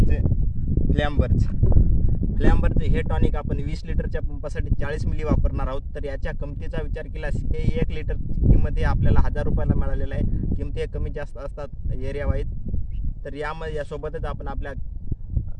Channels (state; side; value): identical; both; correlation 1.00